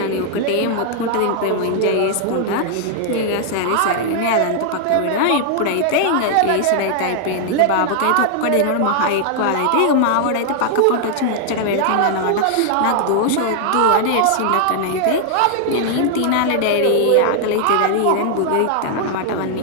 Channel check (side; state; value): both; different; correlation 0.00